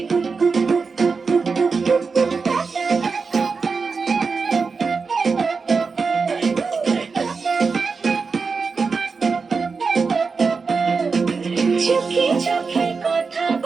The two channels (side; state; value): left; quieter; 4.8 dB